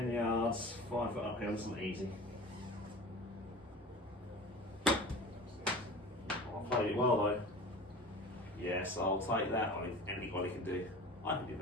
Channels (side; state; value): both; normal; correlation 0.36